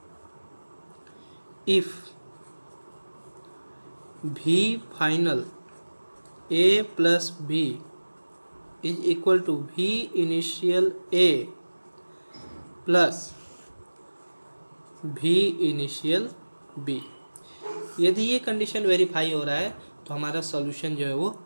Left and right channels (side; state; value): both; inverted; correlation -1.00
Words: if V final A plus B is equal to V initial A plus V initial B, यदि ये कंडीशन वेरीफाई हो रहा है तो हमारा सॉल्यूशन जो है वो